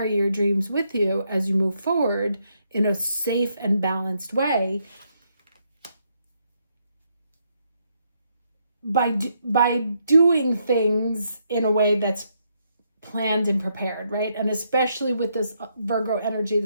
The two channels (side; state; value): both; inverted; correlation -0.76